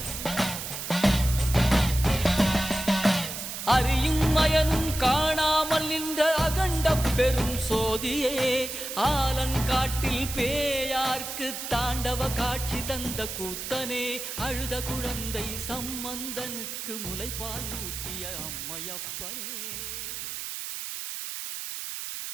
அறியும் மயனும் காணாமல் நின்ற அகண்ட பெரும் சோதியே ஆலங்காட்டில் பேயார்க்கு தாண்டவ காட்சி தந்த கூத்தனே அழுத குழந்தை சம்பந்தனுக்கு முலைப்பால் ஊட்டிய அம்மையப்பனே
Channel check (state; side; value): noise; right; hiss, 6 dB below the sound